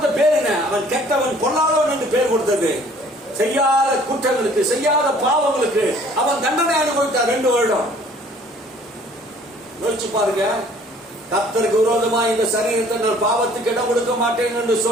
பேர் என்ன? அவன் கெட்டவன், கொல்லாதவன் என்று பேர் கொடுத்தது. செய்யாத குற்றங்களுக்கு, செய்யாத பாவங்களுக்கு அவன் தண்டனை அனுபவித்தார் 2 வருடம். யோசிச்சு பாருங்க. கர்த்தருக்கு விரோதமா இந்த சரீரத்தை நான் பாவத்துக்கு இடம் கொடுக்க மாட்டேன் என்று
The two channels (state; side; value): normal; both; correlation 0.55